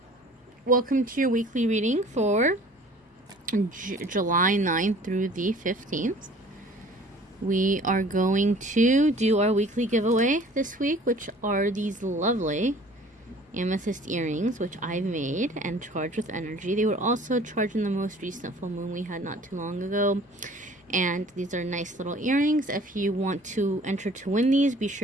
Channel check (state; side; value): normal; both; correlation 0.50